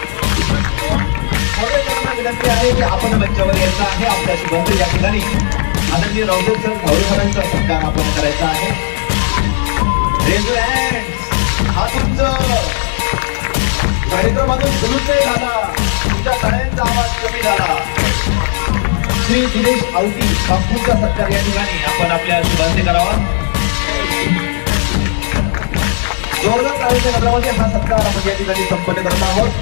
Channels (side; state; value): right; silent; digital silence